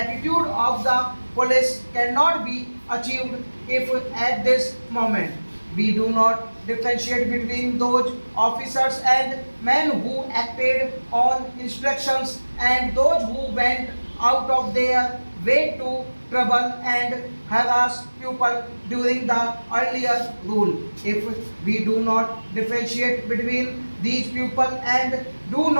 of the police cannot be achieved if at this moment we do not differentiate between those officers and men who acted on instructions and those who went out of their way to trouble and harass people during the earlier rule. If we do not differentiate between these people and do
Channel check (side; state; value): both; inverted; correlation -1.00